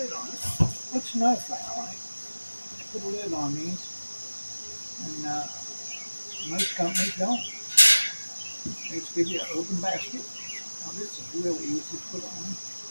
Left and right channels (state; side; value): inverted; both; correlation -1.00